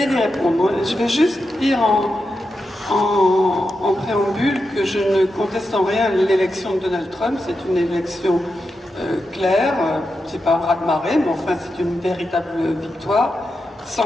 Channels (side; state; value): both; normal; correlation 0.88